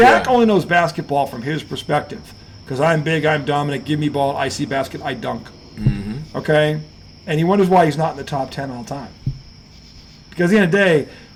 only knows basketball from his perspective, because I'm big, I'm dominant, give me ball, I see basket, I dunk. Mm-hmm. Okay? And he wonders why he's not in the top 10 all time. Because at the end of the day,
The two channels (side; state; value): both; identical; correlation 1.00